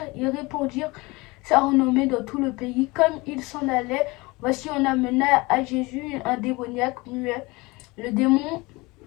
ils répandirent sa renommée dans tout le pays. Comme ils s'en allaient, voici on amena à Jésus un démoniaque muet. Le démon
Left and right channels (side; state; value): right; quieter; 23.7 dB